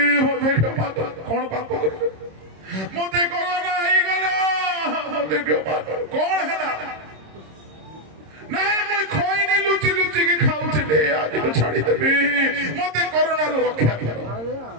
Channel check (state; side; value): late; left; 26 ms